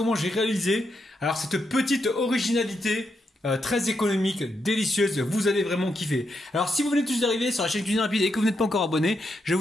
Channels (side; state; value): both; normal; correlation 0.82